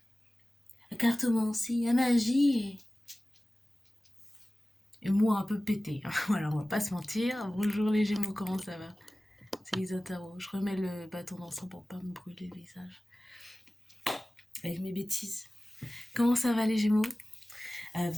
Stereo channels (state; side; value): normal; both; correlation 0.97